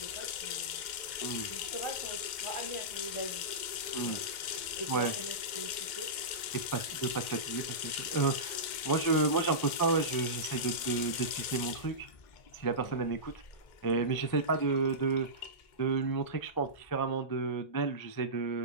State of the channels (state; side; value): late; right; 2.0 ms